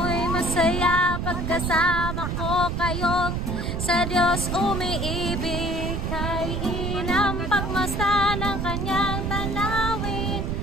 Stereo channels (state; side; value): noise; right; rumble, 2 dB below the sound